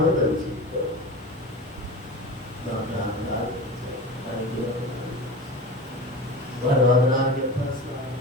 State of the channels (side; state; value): both; normal; correlation 0.31